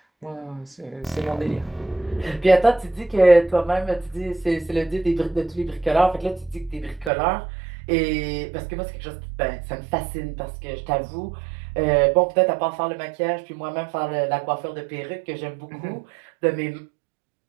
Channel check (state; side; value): drops out; left; at 7.1 s